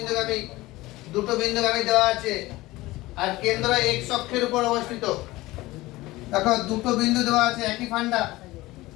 দুটো বিন্দুগামী দেওয়া আছে আর কেন্দ্র x অক্ষের উপর অবস্থিত। দেখো দুটো বিন্দু দেওয়া আছে একই ফান্ডা,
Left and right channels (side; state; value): right; quieter; 19.0 dB